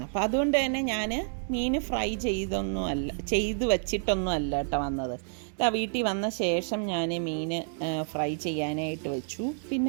അപ്പോൾ അതുകൊണ്ട് തന്നെ ഞാൻ മീൻ ഫ്രൈ ചെയ്ത് വച്ചിട്ടൊന്നും അല്ല കേട്ടോ വന്നത്. വീട്ടിൽ വന്ന ശേഷം ഞാൻ മീൻ ഫ്രൈ ചെയ്യാനായിട്ട് വെച്ചു.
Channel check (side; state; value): left; silent; digital silence